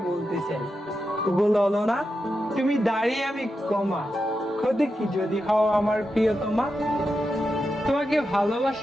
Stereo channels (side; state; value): both; normal; correlation 0.88